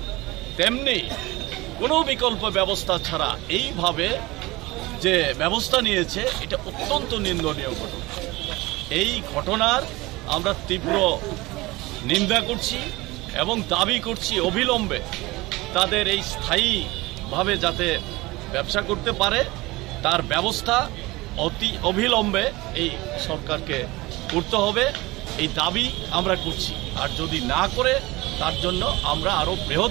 তেমনি কোনো বিকল্প ব্যবস্থা ছাড়া এইভাবে যে ব্যবস্থা নিয়েছে, এটা অত্যন্ত নিন্দনীয় ঘটনা। এই ঘটনার আমরা তীব্র নিন্দা করছি এবং দাবি করছি অবিলম্বে তাদের এই স্থায়ীভাবে যাতে ব্যবসা করতে পারে তার ব্যবস্থা অতি অবিলম্বে এই সরকারকে করতে হবে, এই দাবি আমরা করছি। আর যদি না করে তার জন্য আমরা আরও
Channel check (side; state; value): left; quieter; 21.2 dB